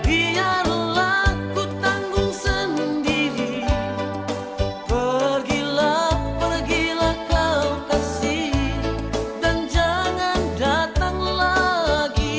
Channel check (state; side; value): identical; both; correlation 1.00